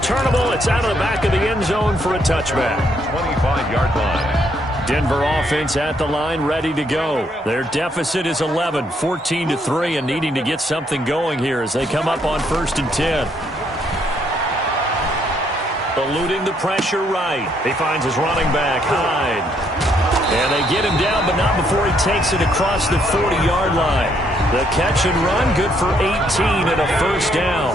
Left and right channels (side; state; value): both; normal; correlation 0.71